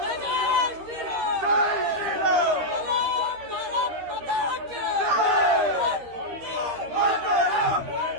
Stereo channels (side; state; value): left; late; 13 ms